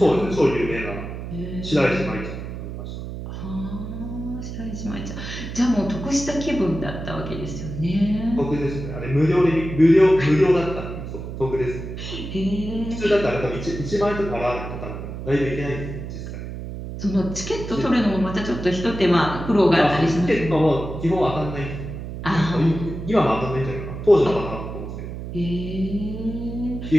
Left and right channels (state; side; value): noise; right; hum, 8 dB below the sound